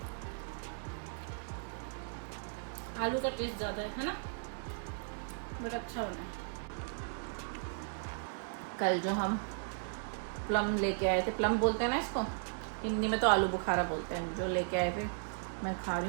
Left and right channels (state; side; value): silent; left; digital silence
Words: आलू का टेस्ट ज़्यादा है ना, बड़ा अच्छा बना है। कल जो हम प्लम लेके आए थे, प्लम बोलते हैं ना इसको हिंदी में, तो आलू बुखारा बोलते हैं, जो लेके आए थे मैं खा रही